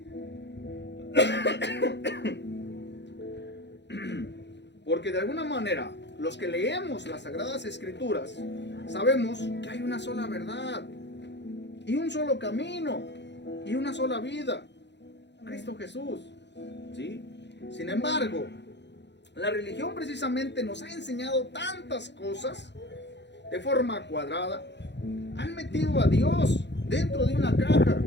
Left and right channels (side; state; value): right; late; 0.51 ms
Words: Porque de alguna manera, los que leemos las Sagradas Escrituras, sabemos que hay una sola verdad, y un solo camino, y una sola vida, Cristo Jesús. ¿Sí? Sin embargo, la religión precisamente nos ha enseñado tantas cosas de forma cuadrada. Han metido a Dios dentro de una caja